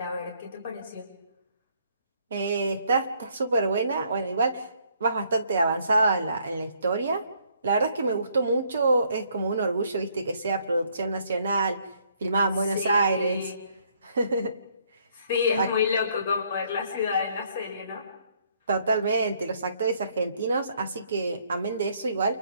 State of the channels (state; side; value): inverted; both; correlation -0.67